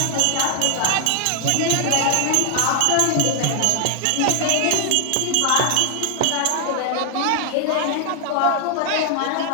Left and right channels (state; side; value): different; both; correlation 0.00